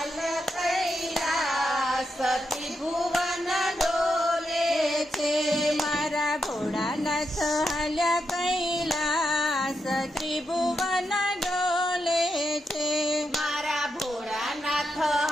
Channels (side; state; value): both; normal; correlation 0.84